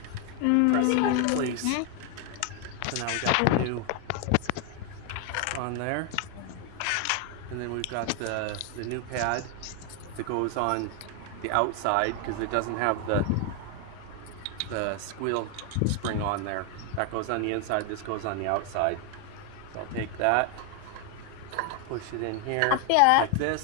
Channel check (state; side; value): different; both; correlation 0.01